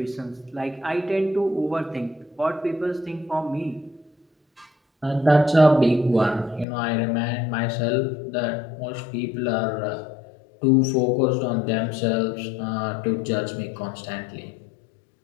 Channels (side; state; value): right; drops out; at 6.7 s